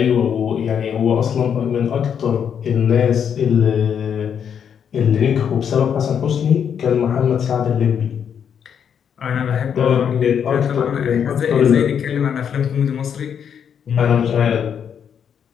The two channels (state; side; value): quieter; right; 7.9 dB